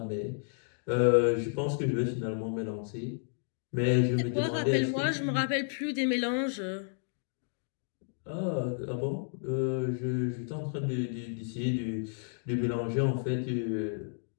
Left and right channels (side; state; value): right; silent; digital silence